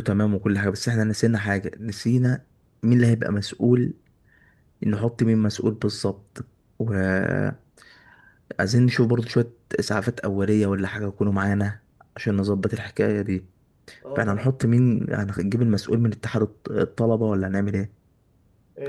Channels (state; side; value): identical; both; correlation 1.00